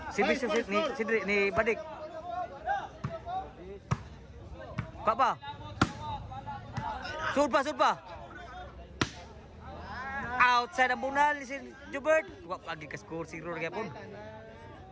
Servisyo ni Sidri ni Badik. Pa. Sud pa. Outside ang bunal si Jubert. Wa lagi ka score 0 lagi pun.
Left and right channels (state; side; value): identical; both; correlation 1.00